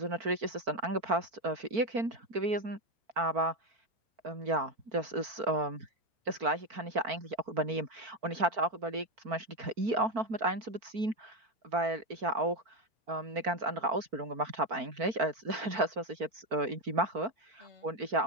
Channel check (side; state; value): left; late; 4.5 ms